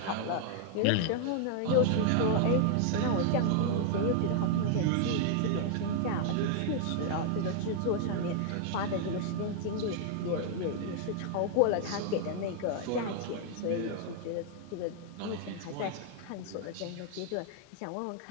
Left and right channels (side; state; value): both; different; correlation 0.00